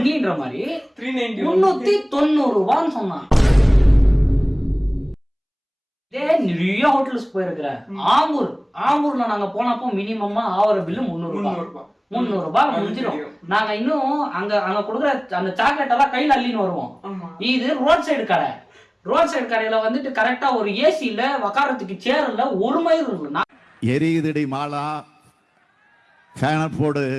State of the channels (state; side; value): identical; both; correlation 1.00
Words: மாதிரி 390 390 ரூபான்னு சொன்னான். இதே நிறைய ஹோட்டல்ஸ் போயிருக்கிறேன். ஆம்பூர்ல நாங்க போனப்போ மினிமமா ஆவர பில்லு 300 ரூபாய் முடிஞ்சிடும். நாங்க இன்னும் அங்க கொடுக்குற அந்த சாக்லேட் எல்லாம் கையில அள்ளின்னு வருவோம். இது ரோட் சைடு கடை. ரோட் சைடு கடையில வந்துட்டு கரெக்டா ஒரு ஏசில உக்காரத்துக்கு சேர் இல்ல, ஒரு மயில் இருக்கு. எரியுதடி மாலா போடு